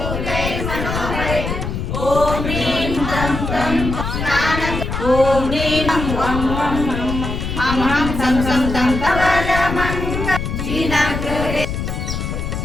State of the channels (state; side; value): noise; left; rumble, 4 dB below the sound